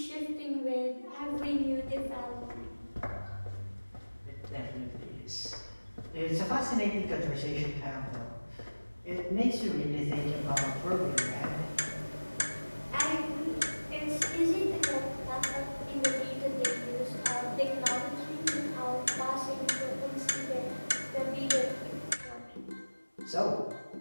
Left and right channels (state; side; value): inverted; both; correlation -1.00